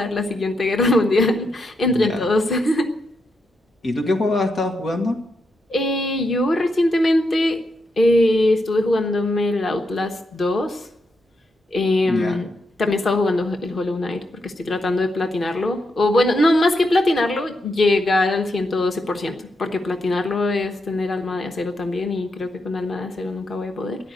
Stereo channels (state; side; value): normal; both; correlation 0.83